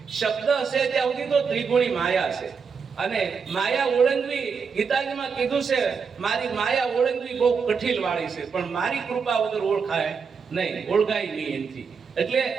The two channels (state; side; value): quieter; left; 5.8 dB